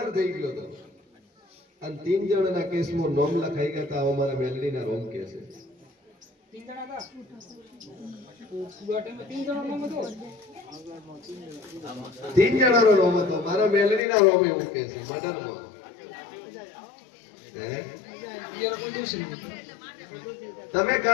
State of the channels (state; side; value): drops out; right; at 14.0 s